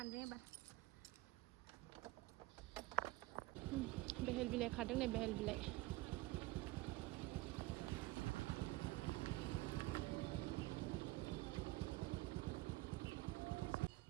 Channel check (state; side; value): quieter; left; 19.8 dB